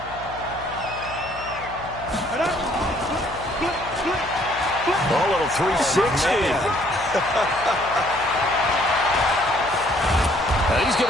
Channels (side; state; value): left; noise; hum, 16 dB below the sound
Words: A little 360. He's